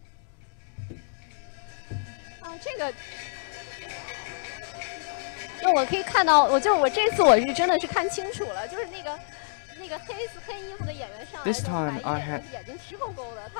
我可以看到，我这次我是真的是看清楚了，就是那个黑衣服的演员上来， This time I had 眼睛直勾勾的，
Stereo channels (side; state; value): right; silent; digital silence